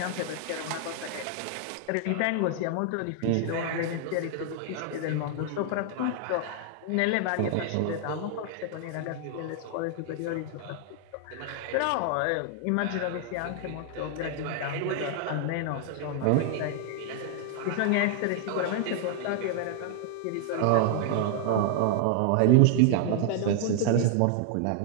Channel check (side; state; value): both; different; correlation 0.00